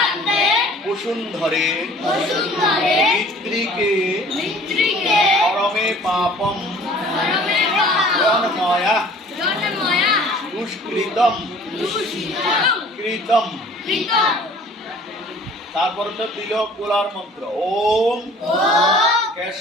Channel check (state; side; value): normal; both; correlation 0.50